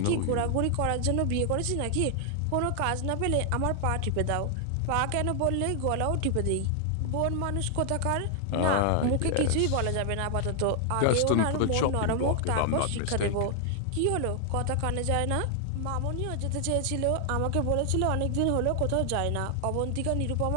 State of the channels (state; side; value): different; both; correlation 0.00